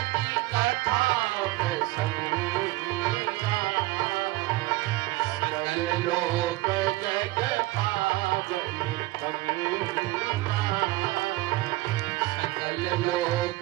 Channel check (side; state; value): left; quieter; 19.1 dB